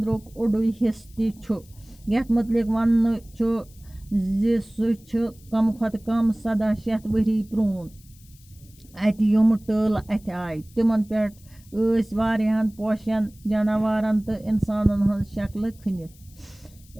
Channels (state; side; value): noise; left; hiss, 27 dB below the sound